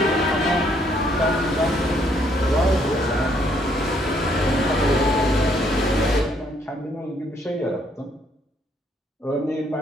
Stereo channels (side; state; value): both; normal; correlation 0.69